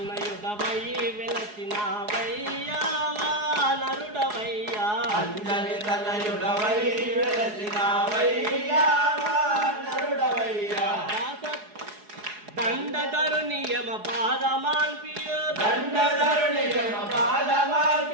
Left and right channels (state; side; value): late; left; 4.8 ms